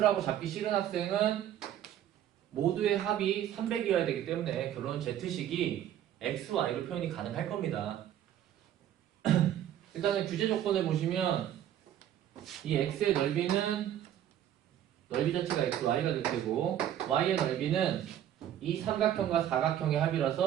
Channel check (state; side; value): quieter; left; 11.1 dB